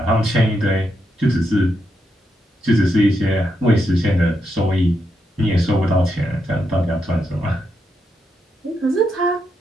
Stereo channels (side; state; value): both; normal; correlation 0.82